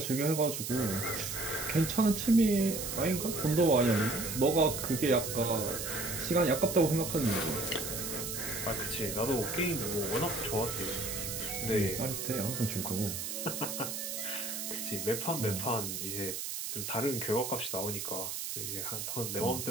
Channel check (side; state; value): right; noise; hiss, 4 dB below the sound